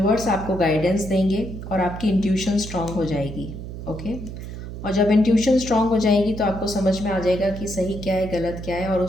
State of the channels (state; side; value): noise; right; hum, 9 dB below the sound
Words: आपको गाइडेंस देंगे और आपकी इंट्यूशन स्ट्रांग हो जाएगी। ओके। और जब इंट्यूशन स्ट्रांग हो जाएगी तो आपको समझ में आ जाएगा कि सही क्या है, गलत क्या है, और